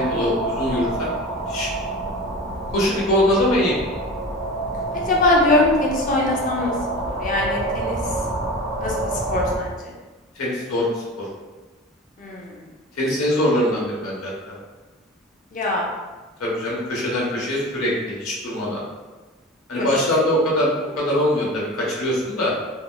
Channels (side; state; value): both; normal; correlation 0.32